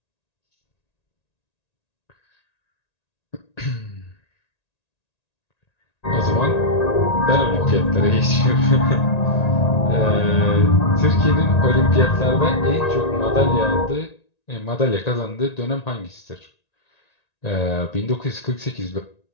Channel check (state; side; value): late; right; 1.9 ms